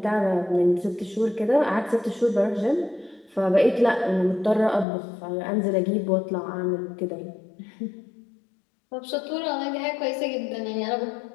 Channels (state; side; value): drops out; right; at 4.9 s